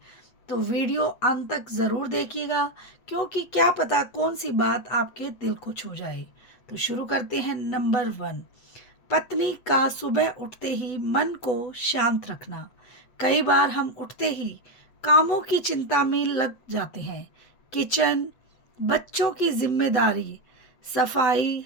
तो वीडियो अंत तक ज़रूर देखिएगा, क्योंकि क्या पता कौन सी बात आपके दिल को छू जाए। तो शुरू करते हैं। नंबर 1, पत्नी का सुबह उठते ही मन को शांत रखना। कई बार हम उठते ही कामों की चिंता में लग जाते हैं। किचन, बच्चों की जिम्मेदारी, सफाई,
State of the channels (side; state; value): right; late; 8.3 ms